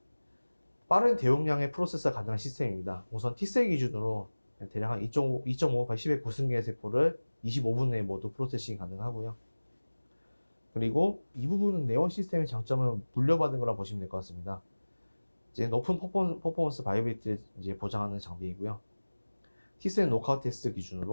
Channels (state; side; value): inverted; both; correlation -1.00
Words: 빠른 대용량의 프로세서가 가능한 시스템입니다. 우선 T셀 기준으로 대략 한 2.5 10의 구승계의 세포를 25분 내에 모두 프로세싱이 가능하고요. 그리고 이 부분은 네온 시스템의 장점은 물려받은 거라 보시면 될 것 같습니다. 이제 높은 퍼포먼스 바이오빌리티를 이제 보장하는 장비이고요. T셀 노크아웃 테스트